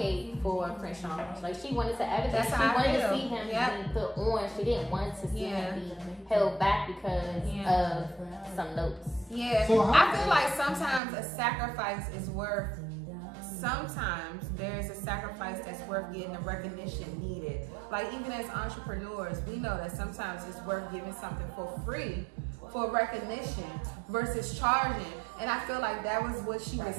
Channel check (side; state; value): left; drops out; at 11.0 s